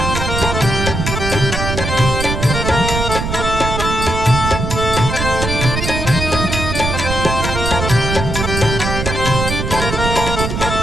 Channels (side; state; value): right; noise; rumble, 3 dB below the sound